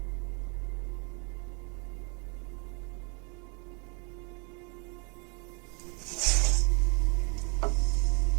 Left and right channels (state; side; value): quieter; left; 33.8 dB